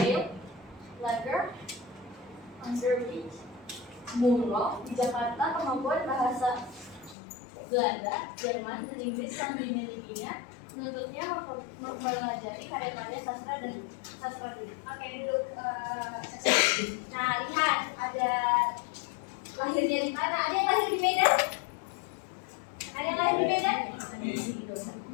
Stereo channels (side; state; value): right; drops out; at 7.2 s